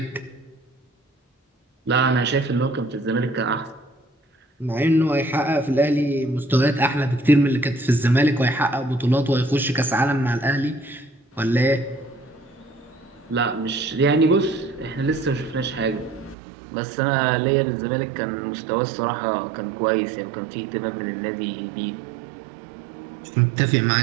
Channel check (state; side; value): drops out; left; at 16.4 s